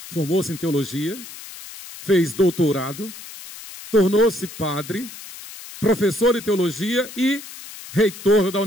formou-se em teologia, fez doutorado, tornou-se padre, professor de teologia e reitor da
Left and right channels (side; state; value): left; noise; hiss, 14 dB below the sound